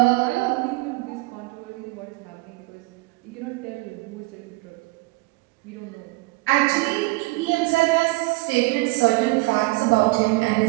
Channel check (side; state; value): left; quieter; 23.9 dB